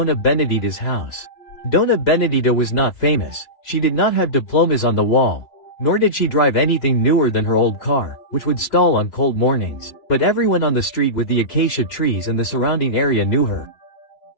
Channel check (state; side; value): late; right; 5.1 ms